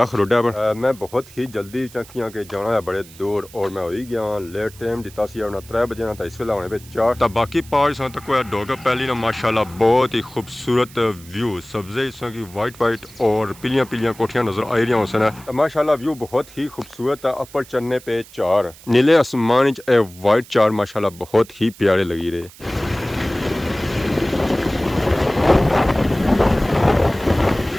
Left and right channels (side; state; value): right; noise; hiss, 21 dB below the sound